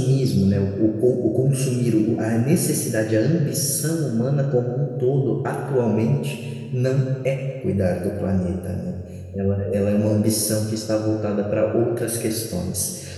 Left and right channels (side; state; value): both; identical; correlation 1.00